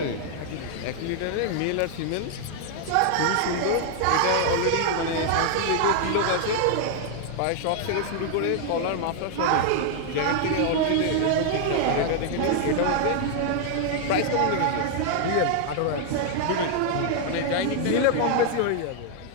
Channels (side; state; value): both; different; correlation 0.00